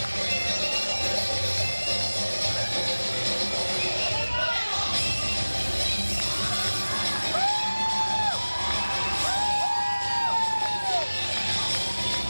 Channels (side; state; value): both; inverted; correlation -1.00